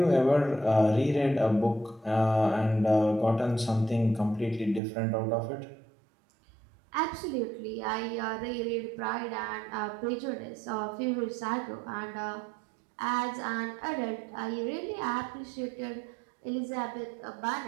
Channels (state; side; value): drops out; left; at 4.8 s